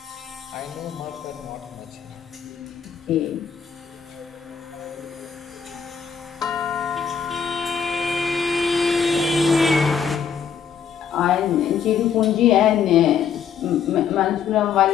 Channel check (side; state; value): right; quieter; 7.1 dB